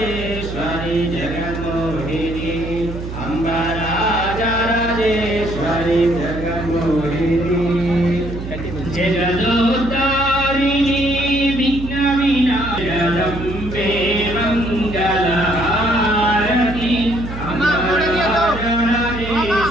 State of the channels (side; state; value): right; noise; hum, 8 dB below the sound